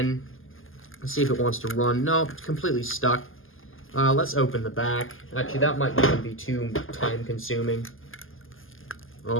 Let's see if it wants to run. No, it's completely stuck. Let's open the back. Actually, that might not even be too time consuming.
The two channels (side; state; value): right; late; 0.59 ms